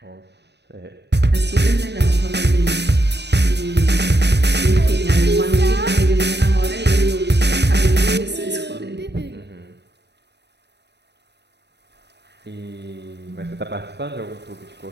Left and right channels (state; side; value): late; left; 0.50 ms